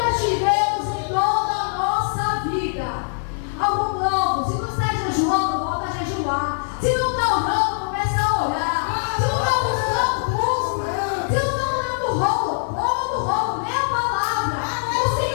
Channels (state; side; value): silent; right; digital silence